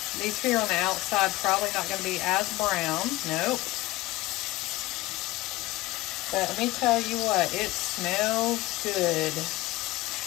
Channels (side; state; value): right; quieter; 19.0 dB